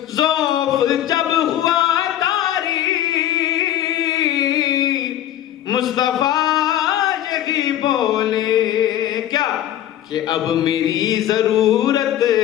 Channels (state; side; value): quieter; right; 12.0 dB